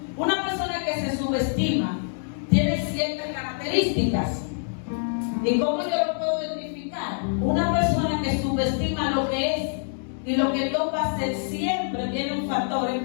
Una persona que se subestima tiene ciertas características. ¿Y cómo yo lo puedo identificar? Una persona que subestima lo que es y lo que Dios va a hacer siempre tiene un factor, es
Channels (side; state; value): right; silent; digital silence